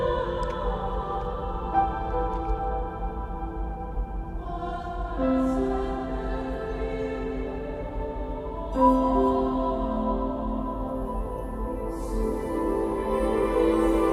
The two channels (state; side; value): identical; both; correlation 1.00